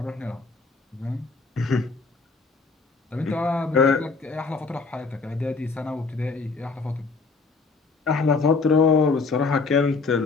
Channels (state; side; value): quieter; right; 4.2 dB